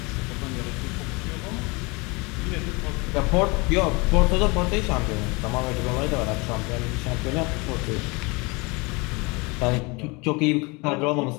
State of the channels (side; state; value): right; quieter; 27.0 dB